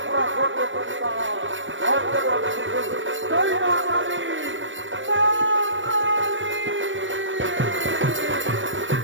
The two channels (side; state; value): left; late; 0.56 ms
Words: করতে পারতাম আজীবন শিশু জয় মা কালী